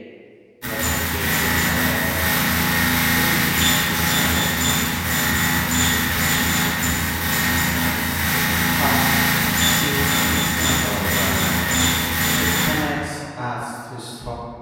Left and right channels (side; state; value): both; identical; correlation 1.00